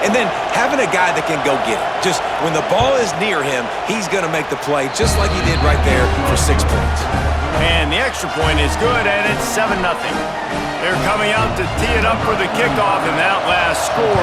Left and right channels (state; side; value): identical; both; correlation 1.00